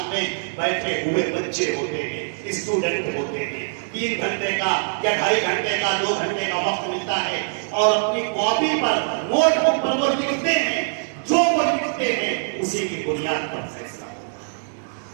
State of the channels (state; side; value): silent; left; digital silence